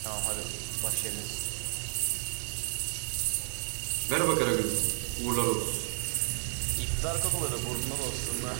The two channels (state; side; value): silent; left; digital silence